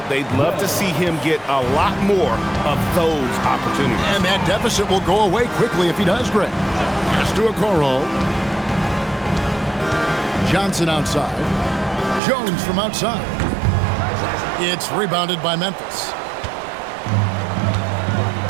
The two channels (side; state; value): left; drops out; at 12.2 s